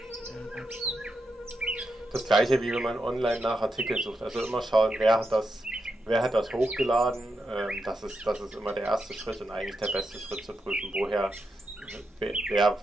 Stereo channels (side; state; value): both; normal; correlation 0.85